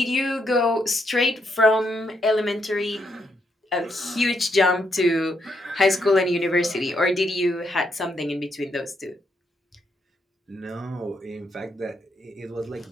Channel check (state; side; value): normal; both; correlation 0.78